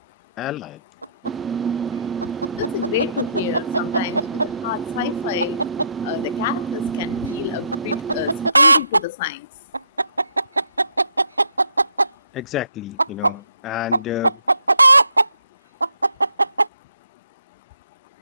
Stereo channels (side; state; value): both; inverted; correlation -0.69